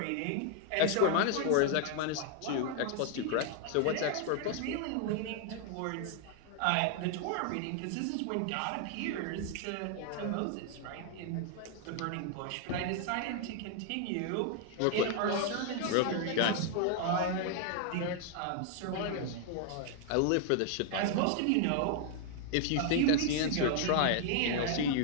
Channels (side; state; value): both; different; correlation 0.00